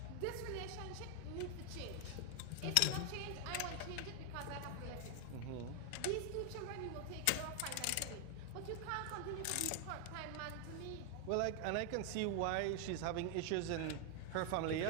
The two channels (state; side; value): different; both; correlation 0.00